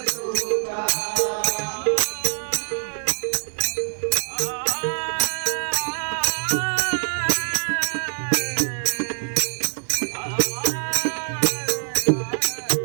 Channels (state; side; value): silent; left; digital silence